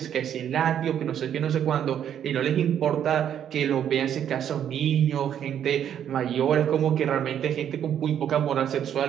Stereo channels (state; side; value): quieter; left; 9.6 dB